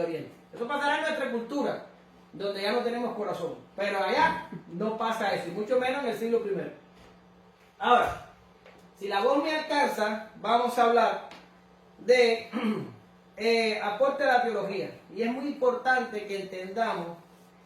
Oriente. Eso pasará en nuestra cultura, donde ya no tenemos corazón. Pero allá no pasa eso, y mucho menos en el siglo I. Ahora, si la voz me alcanza, vamos a hablar de... aporte a la teología, y es muy importante que entendamos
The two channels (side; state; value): both; identical; correlation 1.00